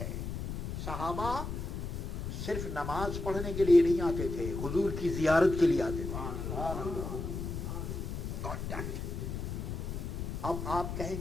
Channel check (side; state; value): left; noise; rumble, 4 dB below the sound